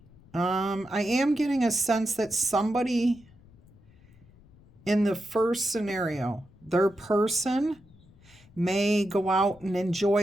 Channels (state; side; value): noise; left; rumble, 26 dB below the sound